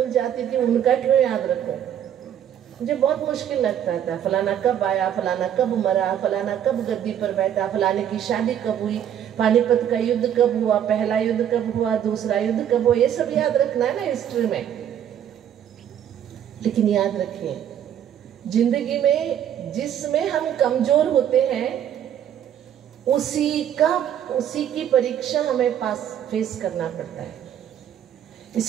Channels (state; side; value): quieter; left; 9.9 dB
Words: जाती थी, उनका क्यों याद रखूं? मुझे बहुत मुश्किल लगता था। फलाना कब आया, फलाना कब मरा, फलाना कब गद्दी पर बैठा, फलाने की शादी कब हुई, पानीपत का युद्ध कब हुआ, पहला युद्ध कब हुआ, दूसरा युद्ध कब हुआ, ये सब याद रखना है ना हिस्ट्री में। लेकिन याद रखिए, जिंदगी में जिसमें हम कमजोर होते हैं उसी की परीक्षा हमें फेस करना पड़ता है।